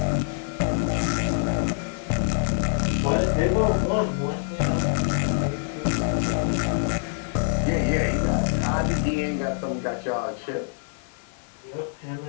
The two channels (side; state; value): right; silent; digital silence